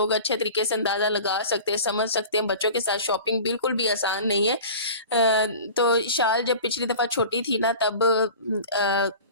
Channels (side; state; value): both; inverted; correlation -0.38